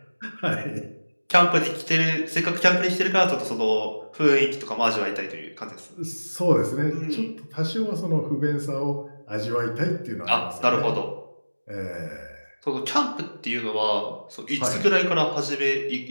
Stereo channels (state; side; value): inverted; both; correlation -1.00